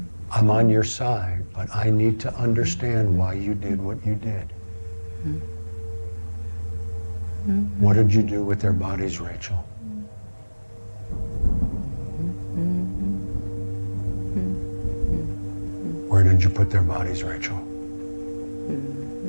I'm on your side, but I need to understand why you did what you did. What did you do with their bodies, Rachel? Where did you put their bodies, Rachel?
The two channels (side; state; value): both; inverted; correlation -1.00